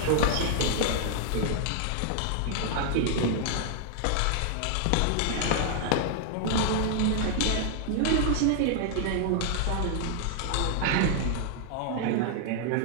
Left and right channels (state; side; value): different; both; correlation -0.01